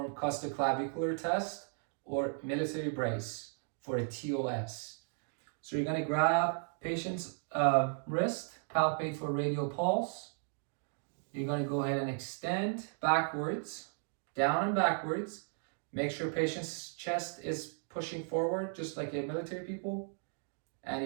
costoclavicular test or military brace for a TOS. So you're going to grab patient's wrist, palpate for radial pulse. You're going to go ahead and extend backwards, down and backwards. Make sure patient's chest is pushing forward, just like a military people.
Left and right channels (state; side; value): silent; left; 54 dB below the other